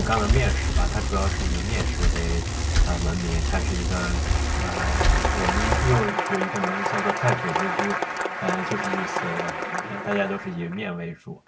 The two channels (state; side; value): identical; both; correlation 1.00